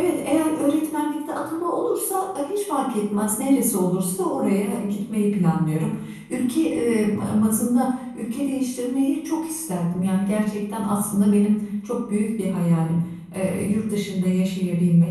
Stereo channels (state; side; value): identical; both; correlation 1.00